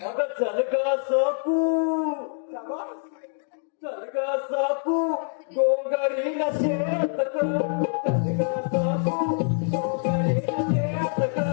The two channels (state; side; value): silent; right; digital silence